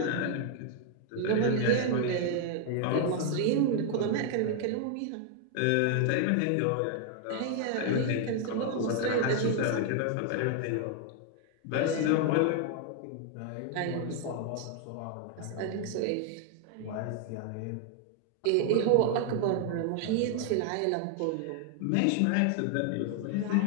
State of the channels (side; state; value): both; different; correlation 0.00